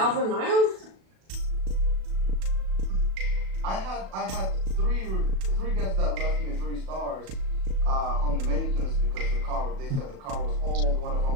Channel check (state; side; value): late; left; 37 ms